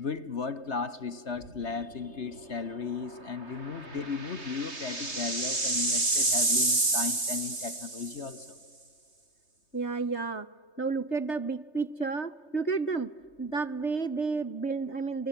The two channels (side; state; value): right; late; 3.3 ms